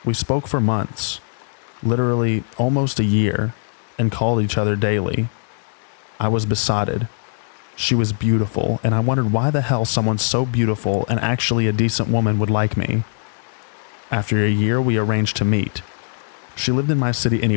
We spoke for months, literally almost a year, and called each other daily. I was besotted. She was beautiful, and I wondered why the hell someone so beautiful and actually a decent woman would like me. After a year, we arranged to meet. She lived in my city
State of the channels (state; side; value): silent; right; digital silence